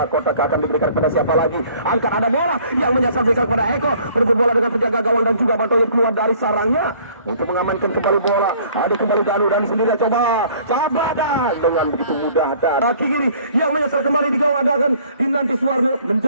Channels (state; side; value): inverted; both; correlation -0.56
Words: akan diberikan kepada siapa lagi. Angkat ada bola yang menyasar berikan kepada Eko. Berebut bola dengan penjaga gawang dan juga Bang Toyib keluar dari sarangnya untuk mengamankan kembali bola. Ada kembali Danu sendirian coba Cap Badak dengan begitu mudah dan kaki kiri yang menyasar kembali di gawang ada kan dinanti Suwarno